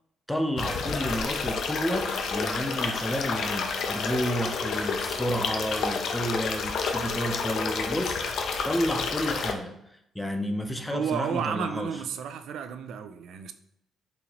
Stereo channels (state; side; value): normal; both; correlation 0.77